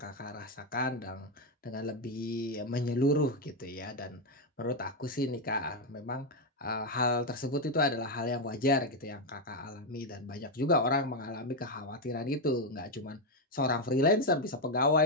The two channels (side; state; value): both; normal; correlation 0.05